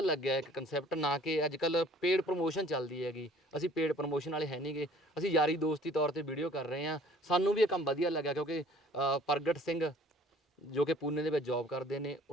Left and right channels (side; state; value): both; normal; correlation 0.53